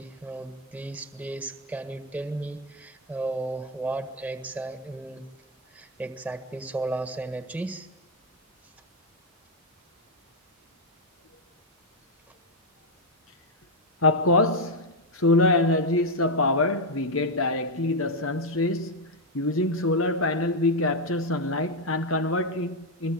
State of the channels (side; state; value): both; normal; correlation 0.03